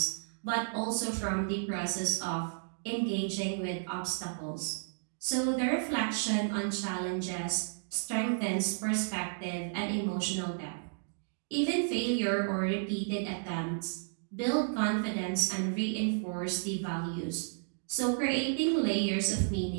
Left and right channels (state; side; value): silent; left; digital silence